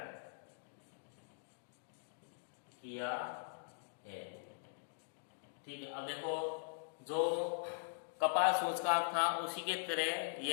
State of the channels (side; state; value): right; silent; digital silence